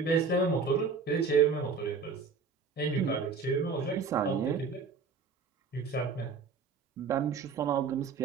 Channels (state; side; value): quieter; left; 5.0 dB